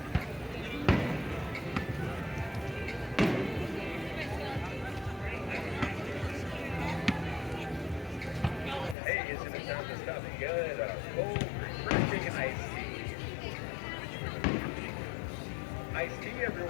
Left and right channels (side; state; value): right; drops out; at 9.0 s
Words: Hey, isn't it time to stop and get a cold, refreshing iced tea? Iced tea,